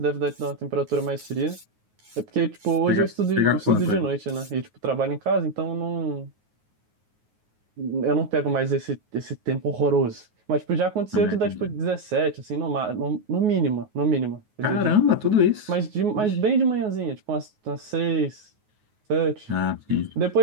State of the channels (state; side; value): late; left; 9.4 ms